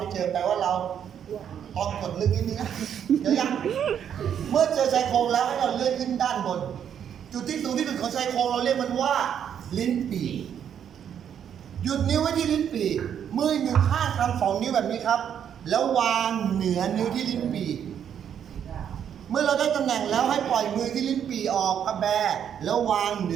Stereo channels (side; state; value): left; quieter; 8.8 dB